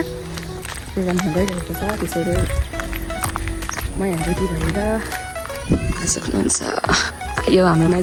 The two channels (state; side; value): identical; both; correlation 1.00